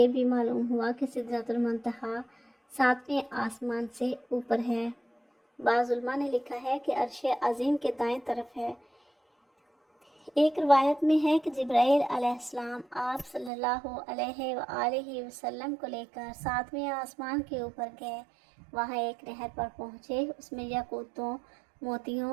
بھی معلوم ہوا کہ سدرۃ المنتہا 7ویں آسمان سے اوپر ہے۔ بعض علماء نے لکھا ہے کہ عرش عظیم کے دائیں طرف ہے۔ ایک روایت میں ہے کہ جبرائیل علیہ السلام آپ صلی اللہ علیہ وآلہ وسلم کو لے کر 7ویں آسمان کے اوپر گئے۔ وہاں ایک نہر پر پہنچے، اس میں یاقوتوں،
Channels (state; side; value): drops out; left; at 13.5 s